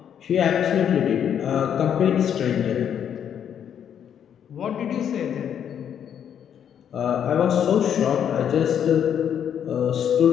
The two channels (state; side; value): quieter; right; 8.9 dB